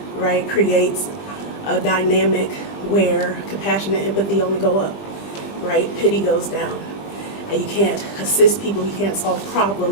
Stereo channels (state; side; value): late; right; 20 ms